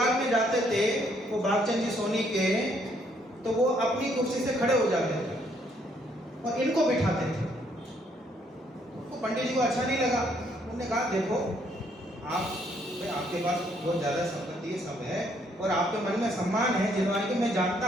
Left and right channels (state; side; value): normal; both; correlation 0.69